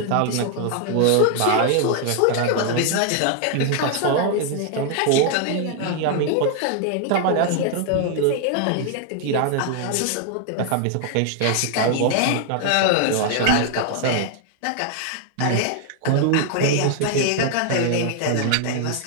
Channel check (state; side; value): different; both; correlation 0.00